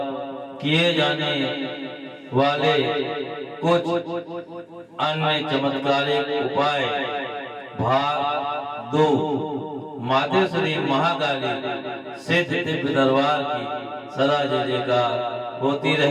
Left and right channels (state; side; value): identical; both; correlation 1.00